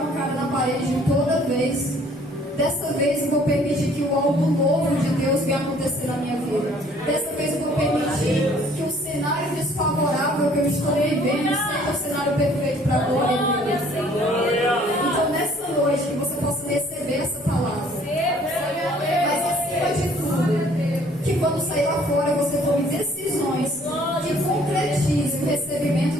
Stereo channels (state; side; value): normal; both; correlation 0.58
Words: a cara na parede toda vez. Dessa vez eu vou permitir que algo novo de Deus venha acontecer na minha vida. Dessa vez eu vou permitir que o cenário desfavorável que eu estou vivendo seja o cenário perfeito para a glória de Deus. Então nessa noite que você possa receber essa palavra. Mas acima de tudo, que quando sair lá fora você tome decisões que concretizem o recebimento